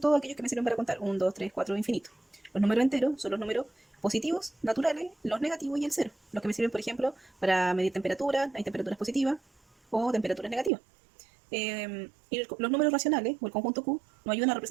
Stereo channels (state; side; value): drops out; left; at 10.7 s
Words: todos aquellos que me sirven para contar 1, 2, 3, 4, infinito. Los números enteros son los números positivos, naturales, los negativos y el cero. Los que me sirven, por ejemplo, para medir temperatura, hay temperaturas positivas o temperaturas negativas. Y los números racionales, o el conjunto Q, nos ayudan a